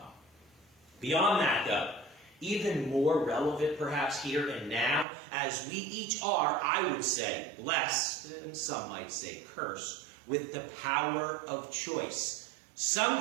Beyond that, though, even more relevant perhaps here and now, as we each are, I would say, blessed, and some might say cursed, with the power of choice.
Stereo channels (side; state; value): left; drops out; at 5.1 s